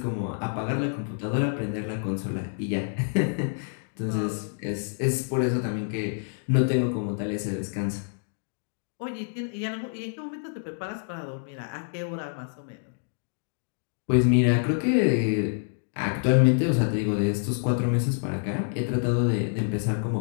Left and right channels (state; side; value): silent; right; digital silence